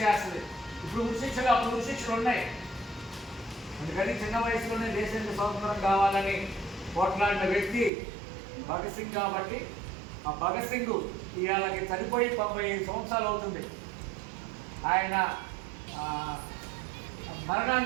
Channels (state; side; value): drops out; left; at 7.9 s